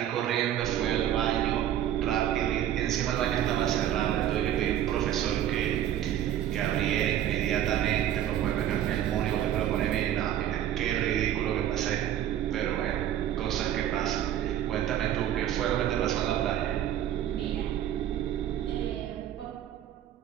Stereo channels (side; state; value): left; quieter; 11.3 dB